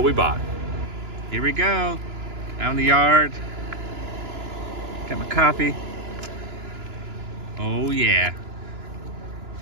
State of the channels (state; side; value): late; left; 2.9 ms